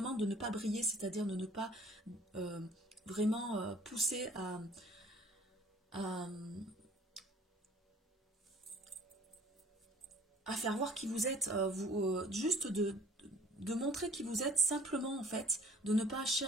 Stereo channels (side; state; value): both; normal; correlation 0.52